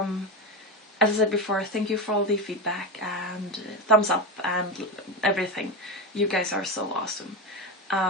As I said before, thank you for all the feedback and thumbs up and everything. You guys are so awesome.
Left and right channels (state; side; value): normal; both; correlation 0.17